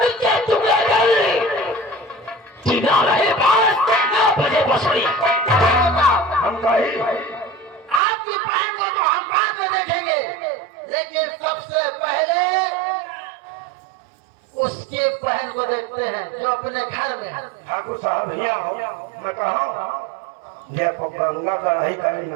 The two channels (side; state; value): left; drops out; at 8.0 s